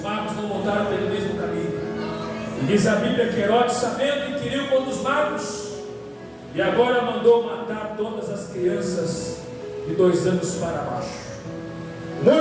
magos não voltaram pelo mesmo caminho. E diz a Bíblia que Herodes, sabendo, inquiriu contra os magos, e agora mandou matar todas as crianças de 2 anos para baixo.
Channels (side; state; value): both; identical; correlation 1.00